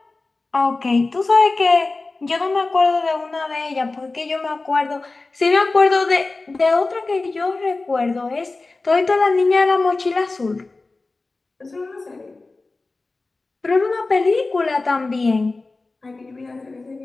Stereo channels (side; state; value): right; quieter; 3.5 dB